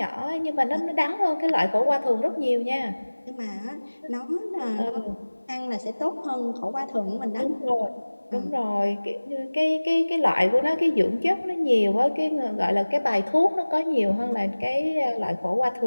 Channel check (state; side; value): inverted; both; correlation -1.00